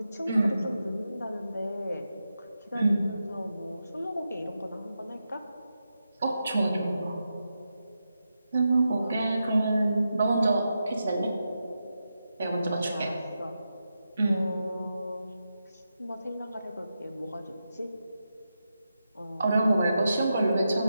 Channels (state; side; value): inverted; both; correlation -0.88